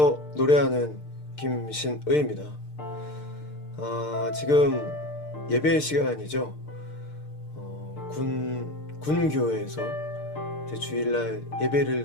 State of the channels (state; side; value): late; right; 6.6 ms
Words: 노래하는 김신의입니다. 지금 예배 시간이죠. 군교회에서 이제 주일날 예배를